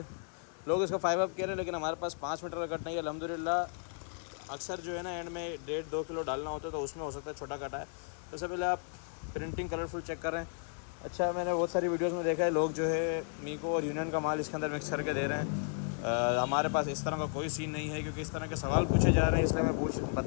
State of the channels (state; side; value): silent; right; 55 dB below the other